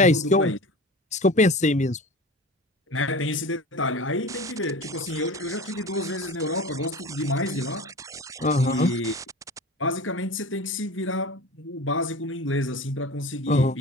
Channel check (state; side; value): normal; both; correlation 0.34